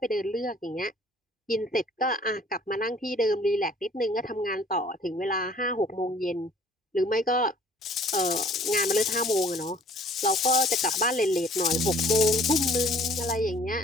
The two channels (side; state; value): both; normal; correlation 0.55